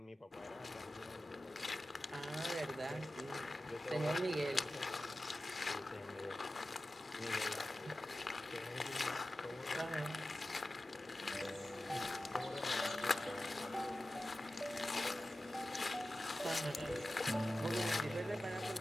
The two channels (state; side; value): normal; both; correlation 0.95